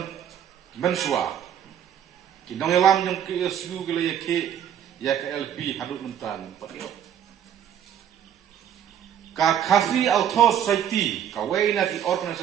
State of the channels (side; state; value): left; quieter; 9.6 dB